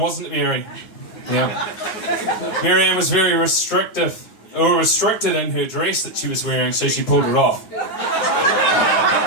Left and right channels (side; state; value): right; late; 9.7 ms